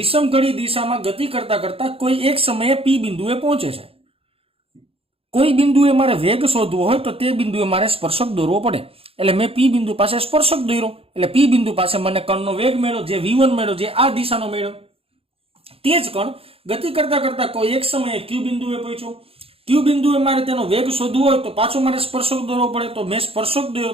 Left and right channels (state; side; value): late; left; 0.28 ms